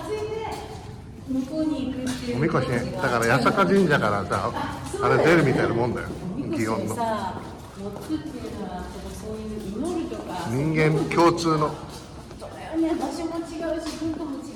いで向こうに行くっていうおみこしね。だから八坂神社からさ、あれ出るみたいなもんだよ。おみこし祇園のをさ、乗ってっていうのはそういう祈るとか人間共通の。そうだよね、場所も違うし文化も違う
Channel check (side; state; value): both; identical; correlation 1.00